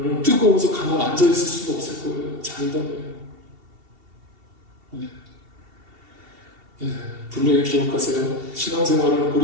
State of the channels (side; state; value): left; late; 2.7 ms